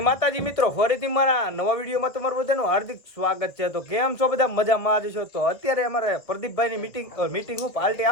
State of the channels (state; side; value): late; right; 1.3 ms